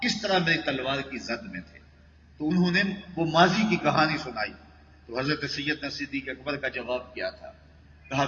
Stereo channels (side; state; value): both; identical; correlation 1.00